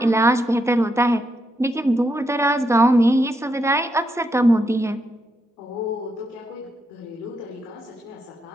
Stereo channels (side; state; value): both; normal; correlation 0.81